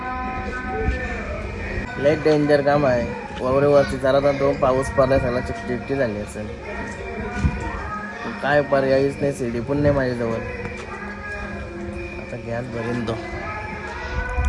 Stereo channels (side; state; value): both; identical; correlation 1.00